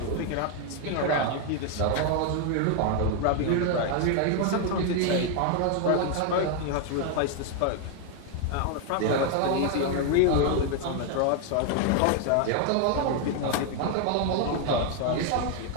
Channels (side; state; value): both; different; correlation 0.01